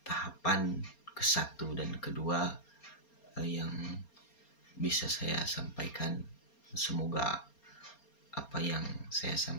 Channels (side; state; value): right; late; 4.3 ms